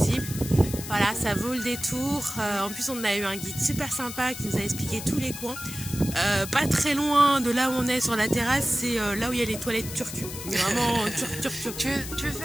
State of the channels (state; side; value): noise; left; hiss, 10 dB below the sound